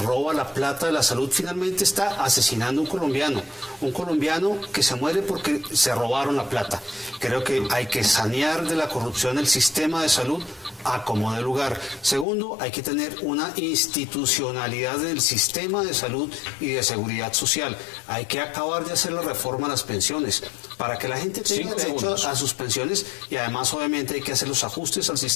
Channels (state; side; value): drops out; right; at 12.2 s